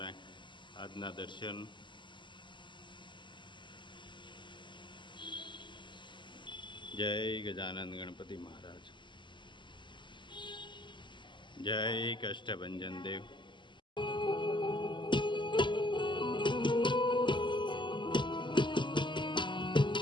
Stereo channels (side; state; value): right; late; 0.23 ms